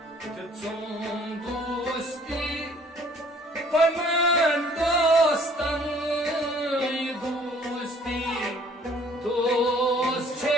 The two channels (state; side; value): normal; both; correlation 0.57